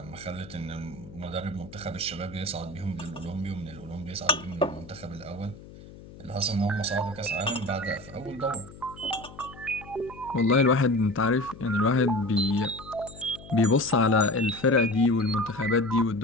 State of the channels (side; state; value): left; noise; hum, 17 dB below the sound